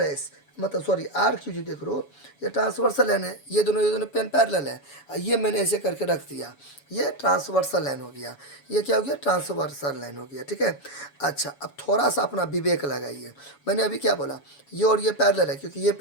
एस, मतलब सॉरी आर क्यू जो देख रहे हो, ये ट्रांसवर्सल लाइन है, ये दोनों पेन पैरेलल है। ये मैंने ऐसे करके रख दिया, ये ट्रांसवर्सल लाइन हो गया, ये क्या हो गया, ट्रांसवर्सल लाइन हो गया। ठीक है, अच्छा अब थोड़ा सा अपना विवेक लगाइए। मैंने अभी क्या बोला, ये और ये पैरेलल है, क्योंकि ये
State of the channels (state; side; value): late; right; 7.1 ms